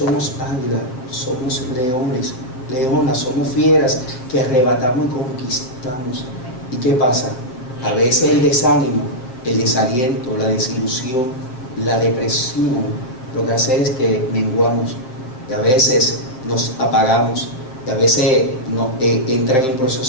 águilas, somos leones, leonas, somos fieras que arrebatamos y conquistamos. ¿Y qué pasa? A veces el desánimo, el desaliento, la desilusión, la depresión, lo que hace es que menguamos, y a veces nos apagamos, y a veces entran en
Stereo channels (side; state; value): right; late; 7.7 ms